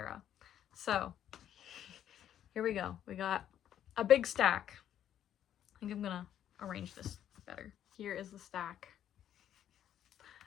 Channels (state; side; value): quieter; right; 10.5 dB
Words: So here we go. We got a big stack. I think I'm gonna arrange this better. Here is the stack.